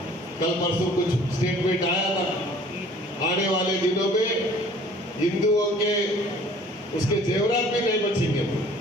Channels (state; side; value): normal; both; correlation 0.52